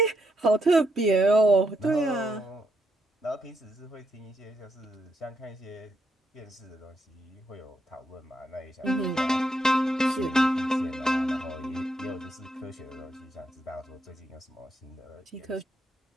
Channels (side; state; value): both; normal; correlation 0.79